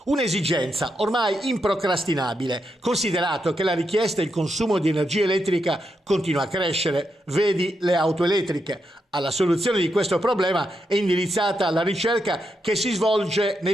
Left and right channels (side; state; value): both; normal; correlation 0.83